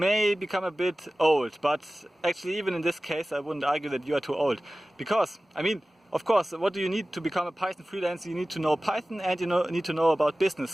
become a bit old. But actually, even in this case, I wouldn't argue that you are too old. Because, I mean, of course, what do you need to become a Python freelancer? You need to know Python and you need to know about business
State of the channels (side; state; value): both; normal; correlation 0.97